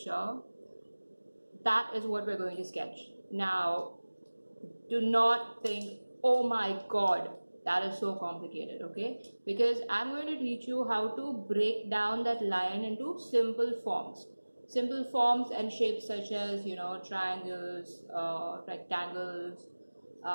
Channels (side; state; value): both; inverted; correlation -1.00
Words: that is what we're going to sketch. Now, do not think, oh my God, that is so complicated, okay? Because I'm going to teach you how to break down that line into simple forms. Simple forms and shapes such as, triangles, rectangles,